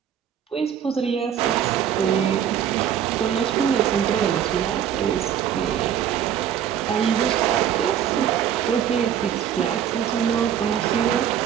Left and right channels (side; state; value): left; quieter; 9.4 dB